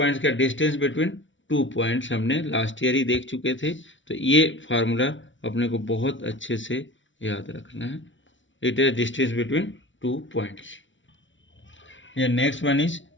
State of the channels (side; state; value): right; late; 0.55 ms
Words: का distance between 2 points हमने last year ही देख चुके थे, तो ये फार्मूला अपने को बहुत अच्छे से याद रखना है। It is distance between 2 points. ये next one is